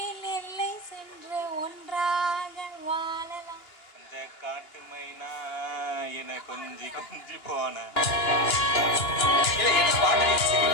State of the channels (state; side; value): late; right; 2.9 ms